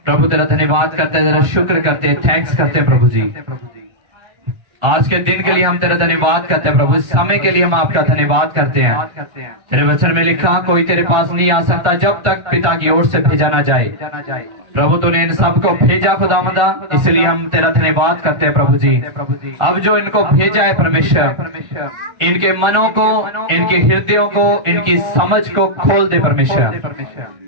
प्रभु तेरा धन्यवाद करते हैं, तेरा शुक्र करते हैं, थैंक्स करते हैं प्रभु जी। आज के दिन के लिए हम तेरा धन्यवाद करते हैं प्रभु, इस समय के लिए हम आपका धन्यवाद करते हैं। तेरे वचन में लिखा कोई तेरे पास नहीं आ सकता जब तक पिता की ओर से भेजा ना जाए। प्रभु तूने इन सबको भेजा खुदावंदा, इसलिए हम तेरा धन्यवाद करते हैं प्रभु जी। अब जो इनको भेजा है परमेश्वर, इनके मनों को, इनके हृदयों को, इनकी समझ को खोल दे परमेश्वर।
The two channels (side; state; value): left; late; 1.5 ms